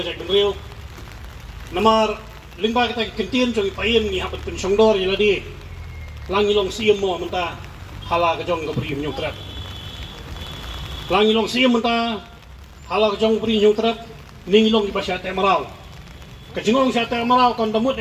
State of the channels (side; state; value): both; identical; correlation 1.00